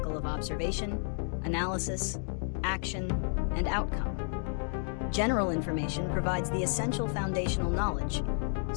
of observation, analysis, action, and outcome. General information provides the essential foundational knowledge,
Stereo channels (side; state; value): right; silent; 57 dB below the other